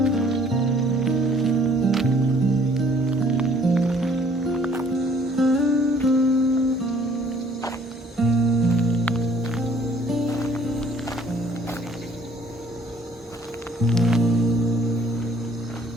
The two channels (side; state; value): both; normal; correlation 0.59